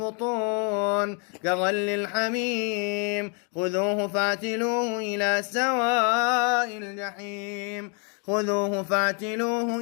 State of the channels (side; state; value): right; quieter; 37.7 dB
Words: كغل الحميم خذوه فاعتلوه إلى سواء الجحيم خذوه فاعتلوه